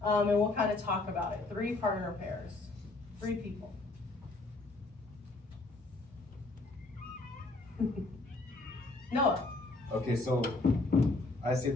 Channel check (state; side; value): quieter; right; 3.2 dB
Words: and we'll kind of talk about it. 3 partner pairs, 3 people. Noah. Okay, so I say